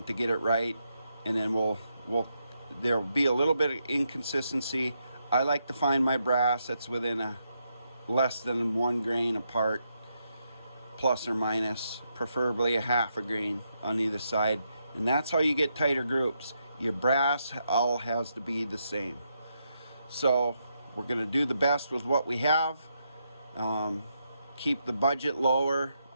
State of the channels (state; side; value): inverted; both; correlation -0.81